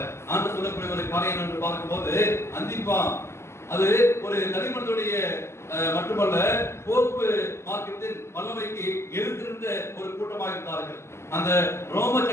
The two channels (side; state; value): right; late; 0.13 ms